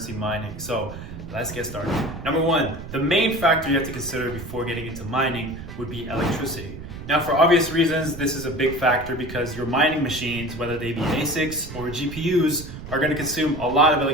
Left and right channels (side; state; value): right; noise; rumble, 12 dB below the sound